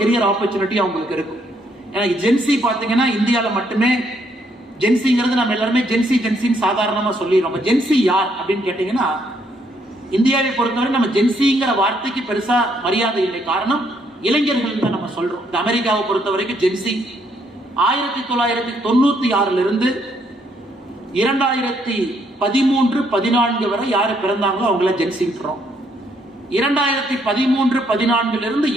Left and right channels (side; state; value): both; normal; correlation 0.71